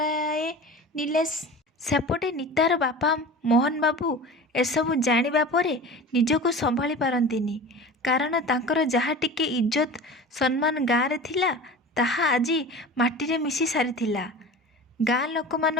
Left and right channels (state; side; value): normal; both; correlation 0.35